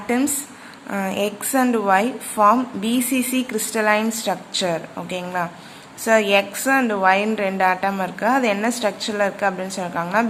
X and Y form BCC crystalline structure. ஓகேங்களா? So X and Y ன்னு ரெண்டு ஆட்டம் இருக்கு. அது என்ன ஸ்ட்ரக்சர்ல இருக்கு அப்படின்னு சொல்றாங்கன்னா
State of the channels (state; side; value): identical; both; correlation 1.00